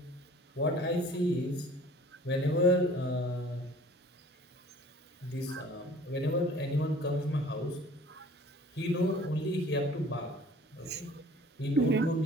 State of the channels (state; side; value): normal; both; correlation 0.50